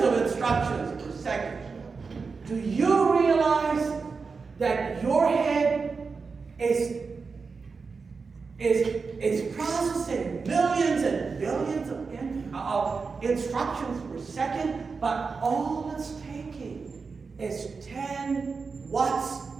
of instructions per second. Do you realize that your head is processing millions and billions of instructions per second, but all it's taking is 10 watts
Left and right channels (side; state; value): left; quieter; 4.8 dB